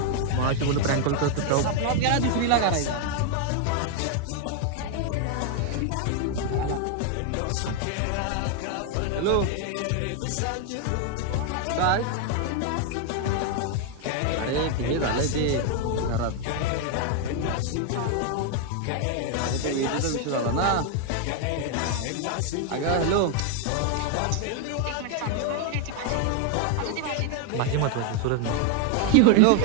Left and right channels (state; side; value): different; both; correlation 0.01